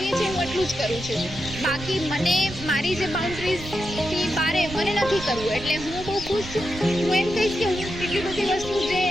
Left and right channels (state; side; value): noise; right; rumble, 12 dB below the sound